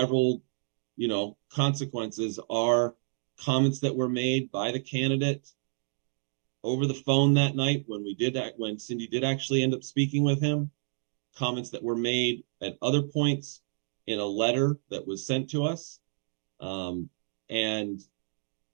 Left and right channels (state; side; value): silent; left; digital silence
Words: consequences are comments that were made by the candidate over the phone that night when Cindy did actually end up speaking with him, comments that were made at other points in a letter that was sent to us, and